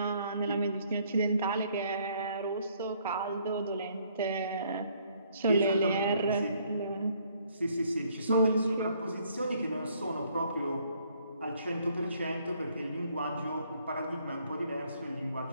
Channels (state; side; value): inverted; both; correlation -0.65